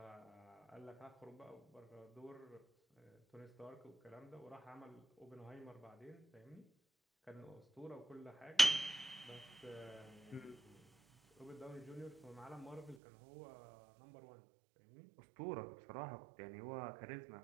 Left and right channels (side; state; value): left; drops out; at 13.0 s